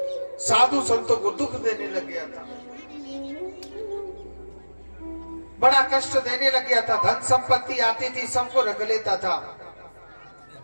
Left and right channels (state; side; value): inverted; both; correlation -1.00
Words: साधु संतों को दुख देने लग गया था, बड़ा कष्ट देने लग गया था, धन संपत्ति आती थी सबको रख लेता था,